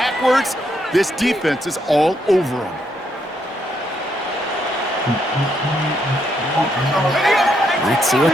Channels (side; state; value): both; normal; correlation 0.76